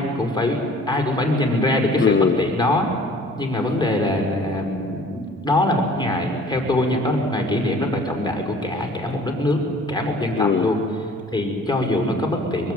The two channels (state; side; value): normal; both; correlation 0.51